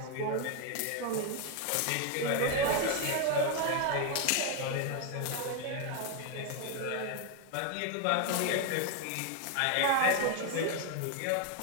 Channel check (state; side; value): different; both; correlation 0.01